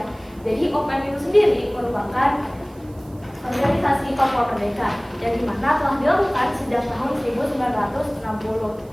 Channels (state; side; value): noise; right; hiss, 29 dB below the sound